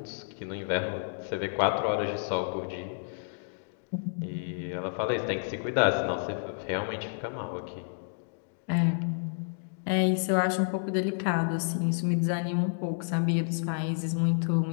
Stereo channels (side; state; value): right; silent; digital silence